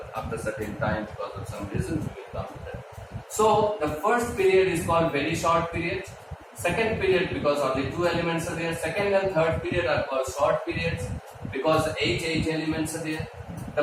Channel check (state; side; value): identical; both; correlation 1.00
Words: after certain time because of some reasons. We will come to that. So the first period is called very short period. Second period because only 2 elements are there. Second and third period are called short periods because 8 elements are there.